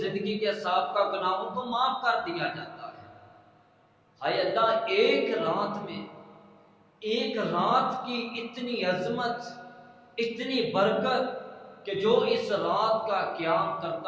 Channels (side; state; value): both; identical; correlation 1.00